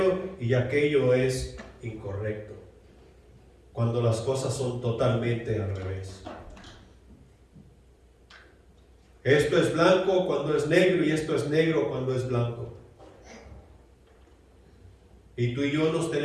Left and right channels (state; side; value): identical; both; correlation 1.00